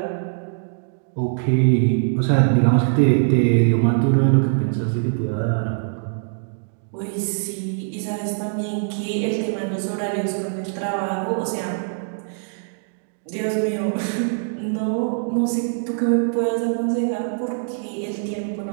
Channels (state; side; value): silent; left; digital silence